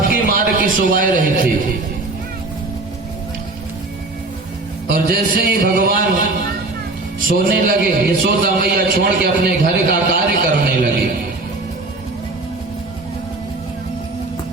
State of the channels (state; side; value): quieter; left; 3.2 dB